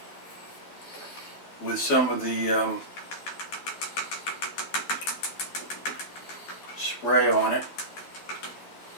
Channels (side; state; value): right; late; 12 ms